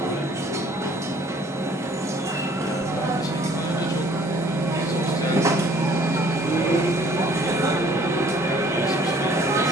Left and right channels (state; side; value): normal; both; correlation 0.57